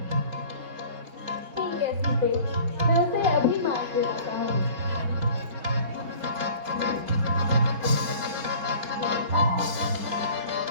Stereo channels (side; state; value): left; late; 4.7 ms